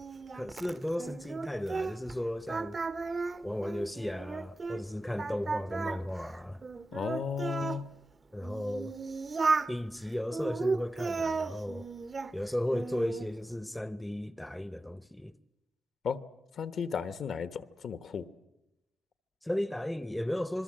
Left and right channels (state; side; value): normal; both; correlation 0.92